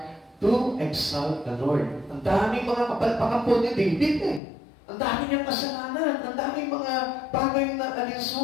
to exalt the Lord. Ang daming mga kapalpakan po ni David eh. Ang dami niyang kasalanan, ang daming mga bagay na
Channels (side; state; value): right; drops out; at 4.4 s